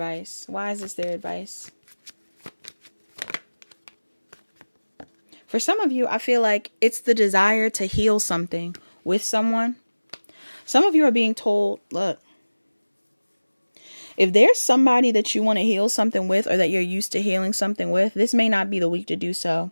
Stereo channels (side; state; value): both; inverted; correlation -1.00